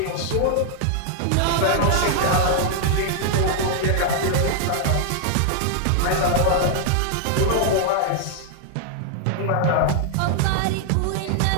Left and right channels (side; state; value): both; different; correlation 0.00